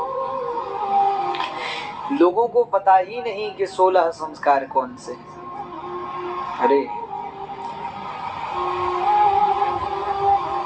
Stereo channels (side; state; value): both; identical; correlation 1.00